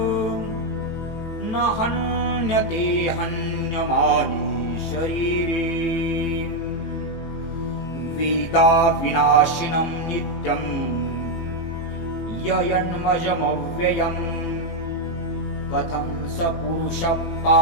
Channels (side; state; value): right; late; 18 ms